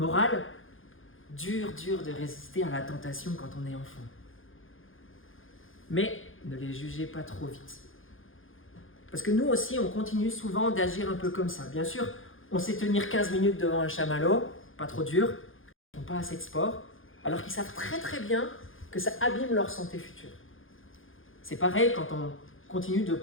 dur de résister à la tentation quand on est enfant. Mais ne les jugez pas trop vite. Parce que nous aussi, on continue souvent d'agir un peu comme ça. Bien sûr, on sait tenir 15 minutes devant un chamallow, pas trop dur, ils n'ont pas assez de sport, alors qu'ils savent très bien que ça abîme leur santé future. C'est pareil quand on continue de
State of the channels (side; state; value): right; late; 0.59 ms